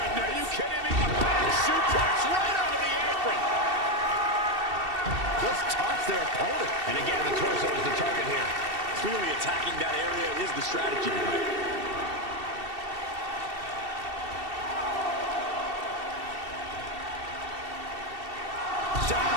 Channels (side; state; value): left; late; 2.7 ms